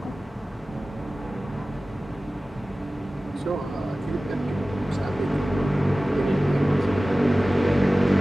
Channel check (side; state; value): both; normal; correlation 0.97